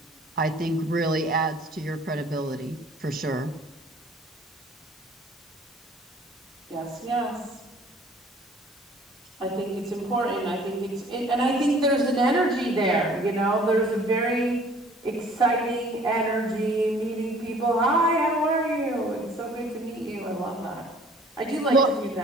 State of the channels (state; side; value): normal; both; correlation 0.53